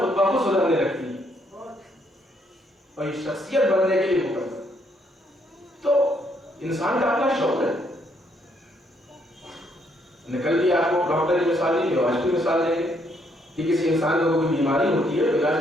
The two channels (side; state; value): both; normal; correlation 0.71